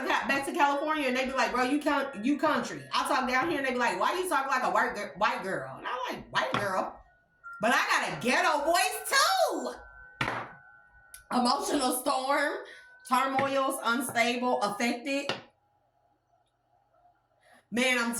back to California and they be like, bro, you country. I talk down here and they be like, why you talk like a white girl? And I'm like, white girl? But I got a ghetto voice too. Emotional storm, turmoils, unstable, affected. Man, I'm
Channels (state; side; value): identical; both; correlation 1.00